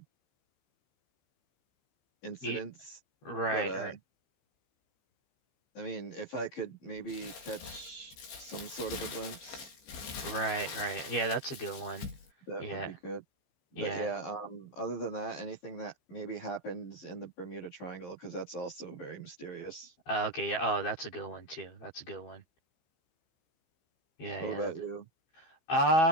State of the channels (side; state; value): right; late; 15 ms